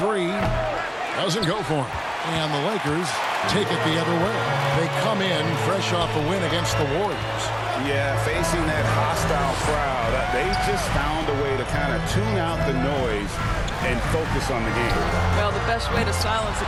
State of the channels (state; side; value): identical; both; correlation 1.00